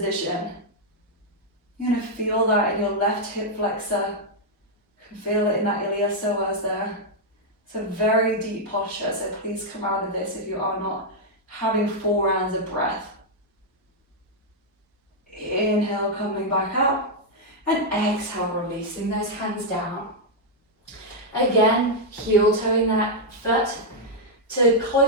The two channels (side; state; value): both; normal; correlation -0.03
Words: You're going to feel that in your left hip flexor. You can feel it in that iliopsoas there. It's a very deep posture, so please come out of this if you are not having 4 rounds of breath. Inhale, coming back up, and exhale, releasing those hands down. Again, heel toeing that foot to